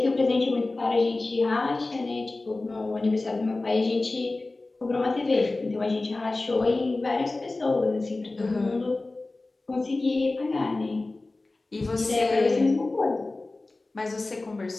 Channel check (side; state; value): right; quieter; 3.2 dB